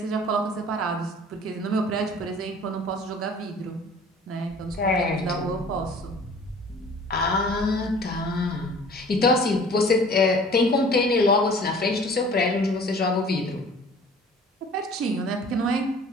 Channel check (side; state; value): both; normal; correlation 0.48